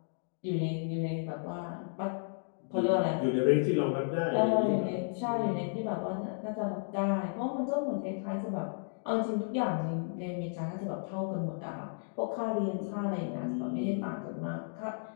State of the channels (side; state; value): right; silent; digital silence